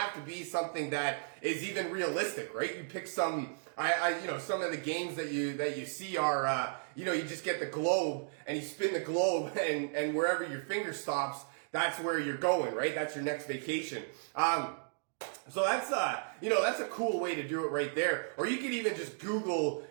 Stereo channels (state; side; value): silent; left; digital silence